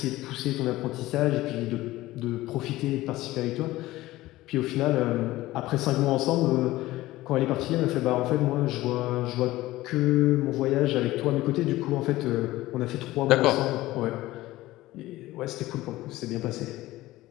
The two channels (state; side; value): quieter; right; 17.2 dB